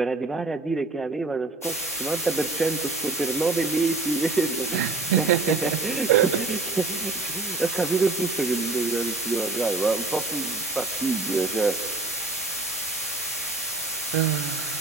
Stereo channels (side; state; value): left; quieter; 3.5 dB